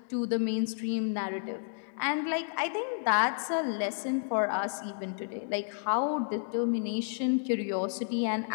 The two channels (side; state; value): right; silent; digital silence